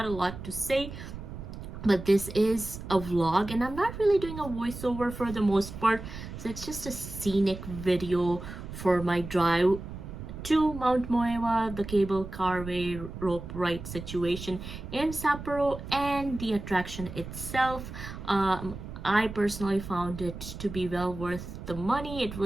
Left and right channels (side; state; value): right; noise; rumble, 10 dB below the sound